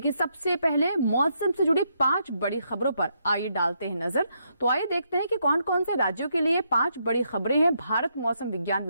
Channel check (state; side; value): inverted; both; correlation -0.77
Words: सबसे पहले मौसम से जुड़ी 5 बड़ी खबरों पर आइए डालते हैं नजर। तो आइए देखते हैं कि कौन कौन से राज्यों के लिए 5 बड़ी खबरें हैं भारत मौसम विज्ञान